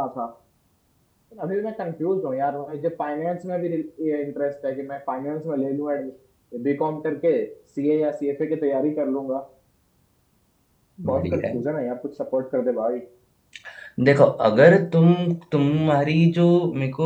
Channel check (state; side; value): identical; both; correlation 1.00